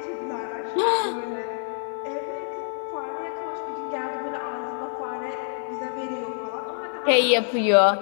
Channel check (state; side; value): silent; right; 61 dB below the other